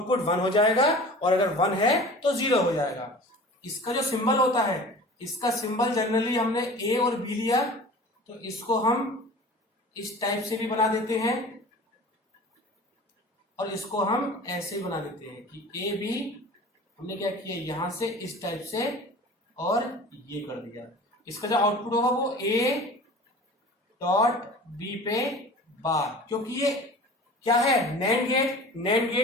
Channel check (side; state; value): both; normal; correlation 0.40